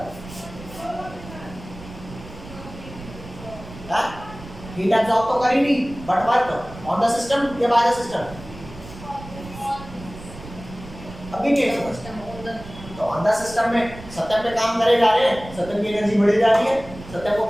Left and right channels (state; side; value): noise; right; rumble, 15 dB below the sound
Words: हीट एब्जॉर्ब तो करी नहीं, but work on the system या बाय द सिस्टम, अभी नहीं समझ। तो ऑन द सिस्टम में सत्यम पे काम करे जा रहे हैं, सत्यम की एनर्जी बढ़ी जा रही है, सत्यम को